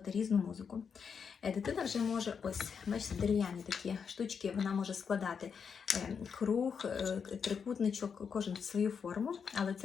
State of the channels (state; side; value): quieter; right; 6.4 dB